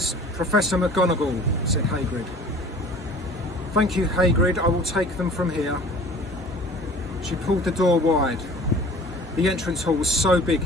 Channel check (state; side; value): normal; both; correlation 0.46